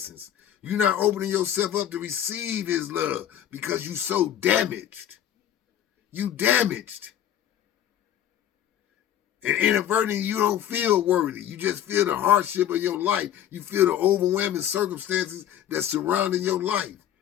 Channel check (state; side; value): quieter; right; 10.7 dB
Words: You're not opening yourself up to receive his love because you're so damaged. You damaged. And inadvertently, you don't feel worthy. You just feel the hardship of your life. You feel the overwhelming circumstances that's surrounding your life.